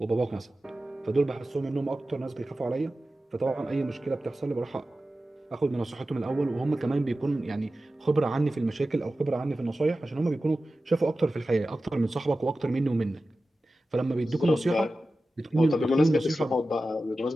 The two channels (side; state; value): both; normal; correlation 0.94